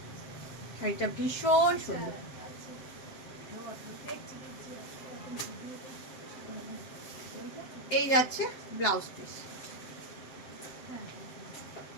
শাড়িটা ভীষণ সুন্দর, এই যাচ্ছে ব্লাউজ পিস,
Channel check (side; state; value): right; late; 7.5 ms